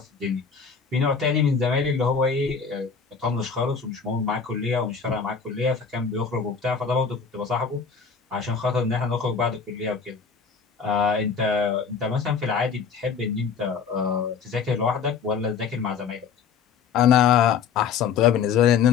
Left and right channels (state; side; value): quieter; right; 6.2 dB